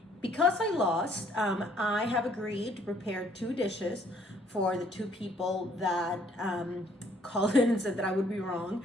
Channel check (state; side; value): normal; both; correlation 0.63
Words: Because I lost, I have agreed to prepare 2 dishes for the 2 people that called in and said that I would be wrong,